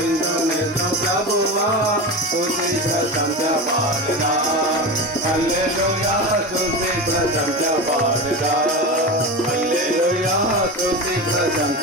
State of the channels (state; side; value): normal; both; correlation 0.24